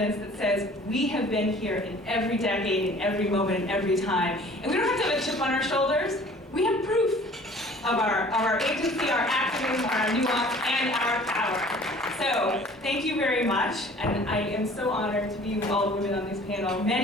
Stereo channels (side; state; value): both; normal; correlation 0.50